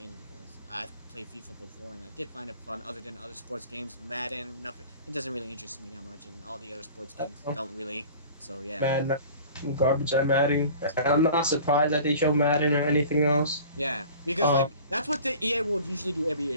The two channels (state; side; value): inverted; both; correlation -0.44